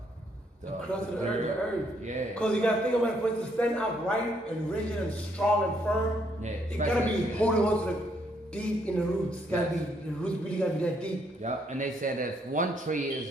crust of the earth. Yeah. Because you gotta think about it, for it to stand upright and rigid and strong and firm. Yeah. It gotta be holding on to the deep in the roots. The roots really gotta be that deep. Yep. And they said that if one tree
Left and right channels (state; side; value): normal; both; correlation 0.71